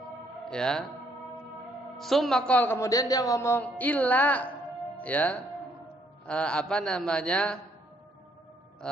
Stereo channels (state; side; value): normal; both; correlation 0.68